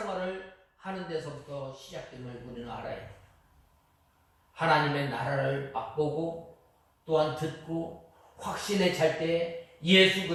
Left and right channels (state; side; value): identical; both; correlation 1.00